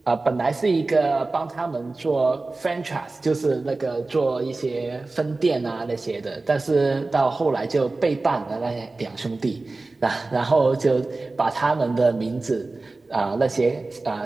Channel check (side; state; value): left; quieter; 3.4 dB